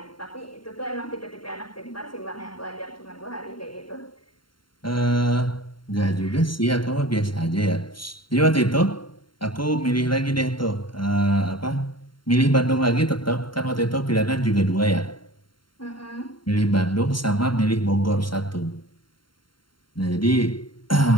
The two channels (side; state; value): right; late; 0.72 ms